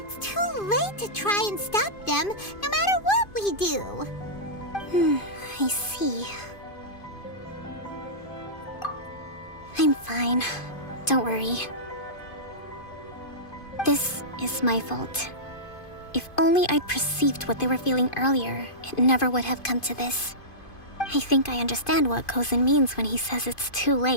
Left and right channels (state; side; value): late; right; 2.5 ms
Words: too late to try and stop them, no matter what we do. I see. I'm fine. Don't worry. This is my fault. If only I'd perceived what they were feeling earlier, it never would have come to this. I think I understand what Kozin means when he says it's too